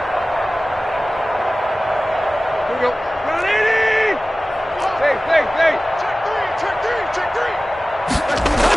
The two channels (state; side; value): normal; both; correlation 0.97